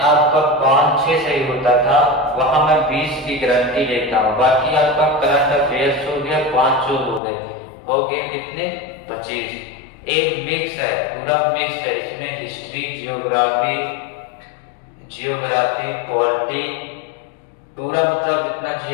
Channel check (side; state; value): right; drops out; at 7.2 s